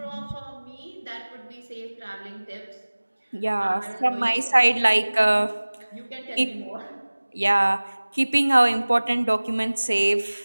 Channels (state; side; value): inverted; both; correlation -1.00